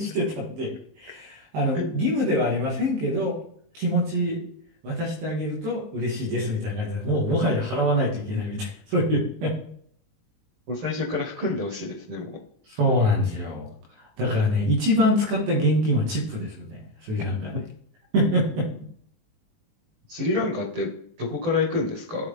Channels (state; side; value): late; left; 19 ms